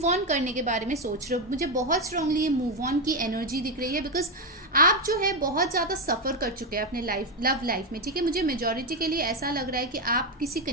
ऑन करने के बारे में सोच रहे हो। मुझे बहुत स्ट्रांगली ये मूव ऑन की एनर्जी दिख रही है, बिकॉज आप जो है बहुत ज़्यादा सफ़र कर चुके हैं अपने लव लाइफ में, ठीक है। मुझे मेजॉरिटी के लिए ऐसा लग रहा है कि आप किसी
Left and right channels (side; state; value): both; normal; correlation 0.08